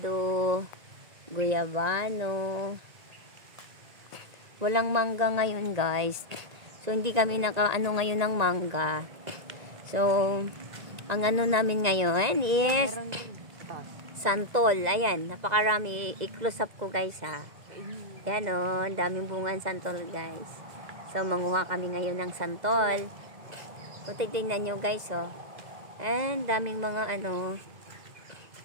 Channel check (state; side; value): late; left; 1.9 ms